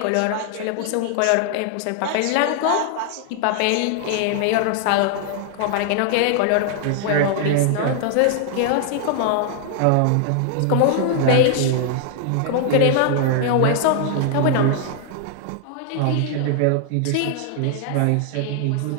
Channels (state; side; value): different; both; correlation 0.00